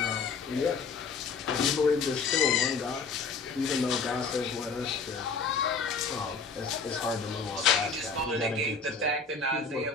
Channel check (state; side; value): quieter; right; 4.8 dB